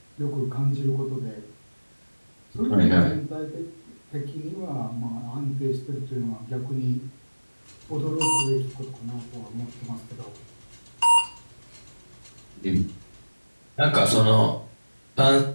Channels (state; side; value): inverted; both; correlation -1.00